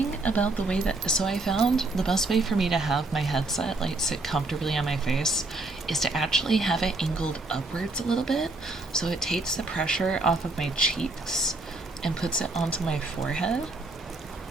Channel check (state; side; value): quieter; left; 3.0 dB